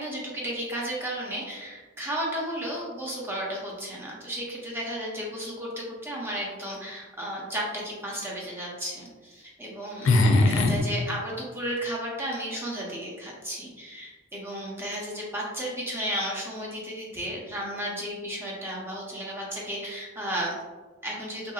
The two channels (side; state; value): both; normal; correlation 0.45